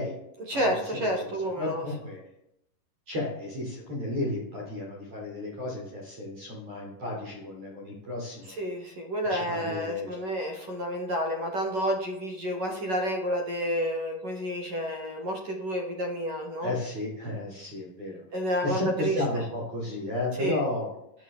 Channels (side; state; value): left; late; 11 ms